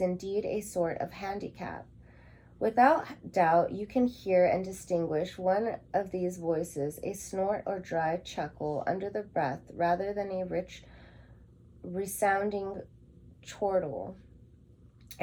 a sort of handicap. Without doubt, you can hear and distinguish one of these voices, a snort or dry chuckle under the breath, rather than a rich, resounding chortle.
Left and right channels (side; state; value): both; identical; correlation 1.00